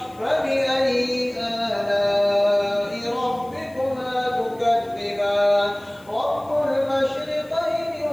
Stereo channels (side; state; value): left; noise; hiss, 28 dB below the sound